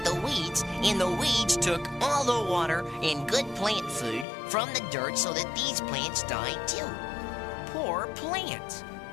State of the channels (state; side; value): drops out; right; at 4.2 s